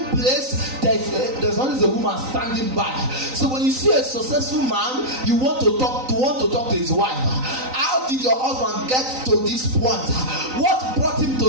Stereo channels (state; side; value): late; left; 3.9 ms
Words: place, there's always a woman standing by. So when you see a successful man, you want to talk to his wife. How did your husband get to this point? What brought him